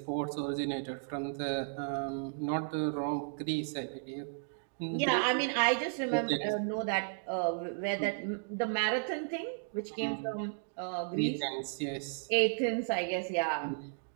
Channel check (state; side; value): silent; left; digital silence